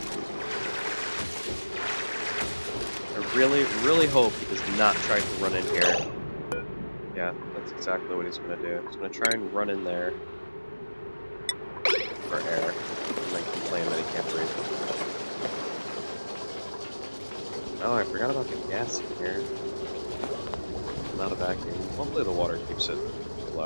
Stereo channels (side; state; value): both; inverted; correlation -1.00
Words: I really hope he does not try to run in here. Yeah, that's exactly what he's going to do. He's going to try and run in there for air, and then complain that he can't breathe. Oh, I forgot about the gas in here. Not a vacuum. Hopefully the water keeps it